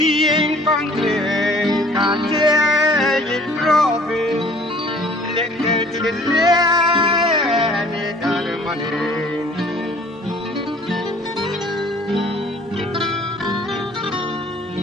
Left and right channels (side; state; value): both; normal; correlation 0.53